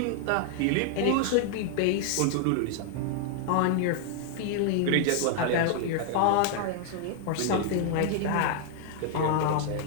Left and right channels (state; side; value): different; both; correlation 0.00